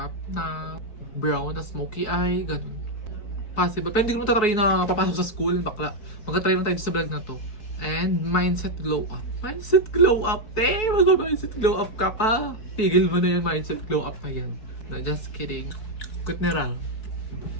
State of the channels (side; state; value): right; late; 4.7 ms